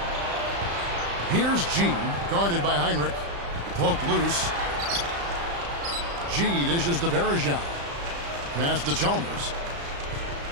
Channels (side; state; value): left; late; 35 ms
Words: Here's G, guarded by Heinrich. Poked loose. G dishes to Varejau. Pass to Chalmers.